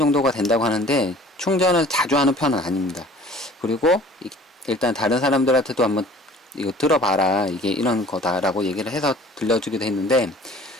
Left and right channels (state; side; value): normal; both; correlation 0.49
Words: 된다고 하는데 충전을 자주 하는 편은 아닙니다. 그리고 일단 다른 사람들한테도 한번 이거 들어봐라, 이게 이런 거다라고 얘기를 해서 들려주기도 했는데,